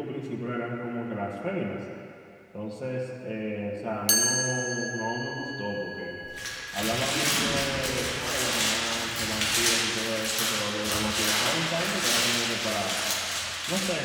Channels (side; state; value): both; identical; correlation 1.00